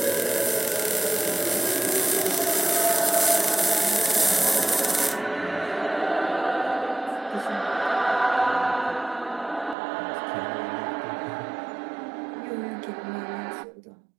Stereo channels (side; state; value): left; drops out; at 9.8 s